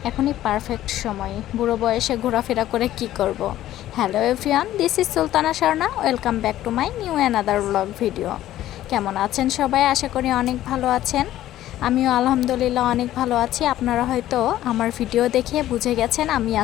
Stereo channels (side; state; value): right; quieter; 13.5 dB